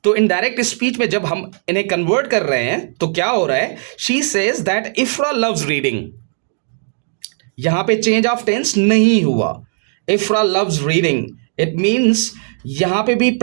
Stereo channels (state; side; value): silent; left; digital silence